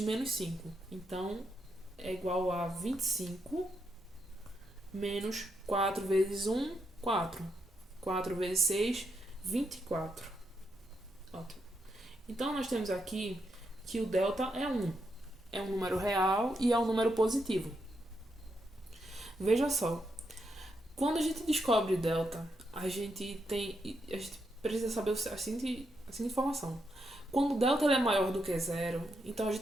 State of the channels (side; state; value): both; normal; correlation 0.81